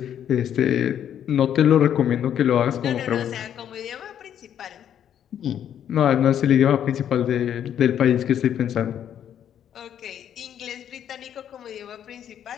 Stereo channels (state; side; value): quieter; right; 9.7 dB